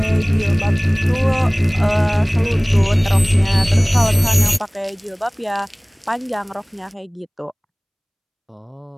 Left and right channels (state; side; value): identical; both; correlation 1.00